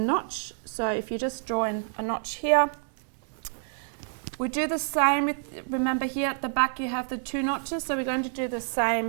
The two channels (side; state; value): left; silent; 59 dB below the other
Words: So if you just draw in a notch here, we do the same with, remember here at the back you have the two notches, so we're going to do the